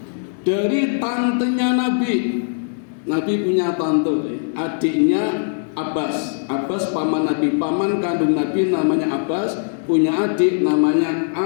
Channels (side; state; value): right; silent; digital silence